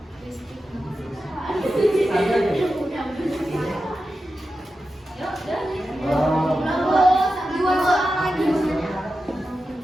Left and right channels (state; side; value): normal; both; correlation 0.91